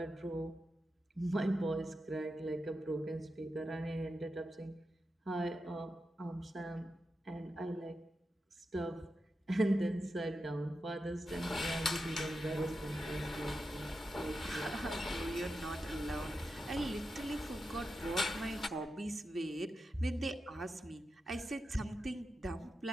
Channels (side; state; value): both; normal; correlation 0.89